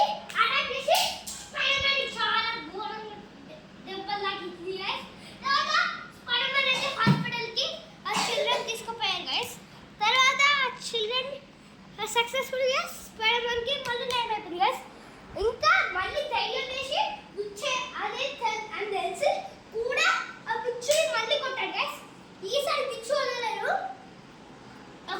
అటాక్ చేసి స్పైడర్మ్యాన్ చాలా ఘోరంగా దెబ్బలు తాకింది గైస్. తర్వాత స్పైడర్మ్యాన్ అయితే హాస్పిటల్కి ఆ చిల్డ్రన్ తీసుకుపోయారు గైస్. తర్వాత ఆ చిల్డ్రన్ సక్సెస్ఫుల్గా స్పైడర్మ్యాన్కి మళ్ళీ నయం అయిపోయింది గైస్. ఇంకా మళ్ళీ ధైర్యం చేసి విచ్చే అదే అని తెలిసి కూడా ఆ పిచ్చుని మళ్ళీ కొట్టాడు గైస్. ఈసారి పిచ్చు వదలలేదు,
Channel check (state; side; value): identical; both; correlation 1.00